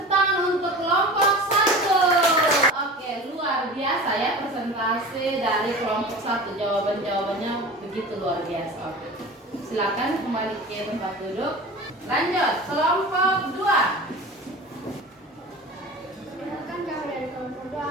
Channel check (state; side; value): normal; both; correlation 0.35